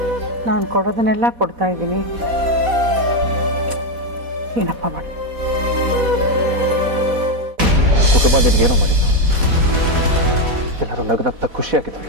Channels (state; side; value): late; left; 4.1 ms